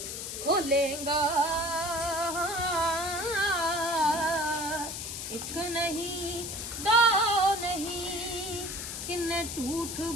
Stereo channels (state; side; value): noise; left; hiss, 6 dB below the sound